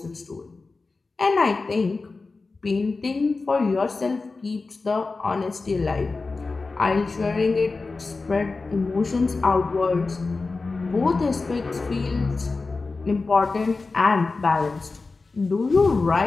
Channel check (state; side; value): quieter; right; 3.9 dB